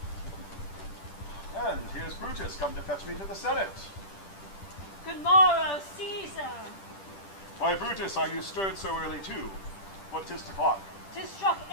And here's Brutus come to fetch me to the Senate. Good morrow, Caesar. Why, Brutus, are you stirred so early too? What 'tis o'clock? 'Tis struck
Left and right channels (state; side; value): late; right; 10 ms